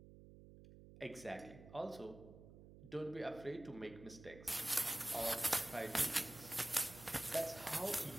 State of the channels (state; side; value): noise; right; hum, 17 dB below the sound